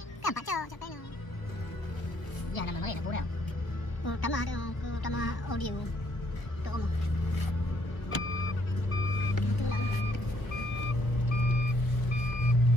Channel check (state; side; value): late; right; 1.0 ms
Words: Kan pak cok cok peno. Ya nama mana nak boleh. Utama audio. Tu omong. Tu lah.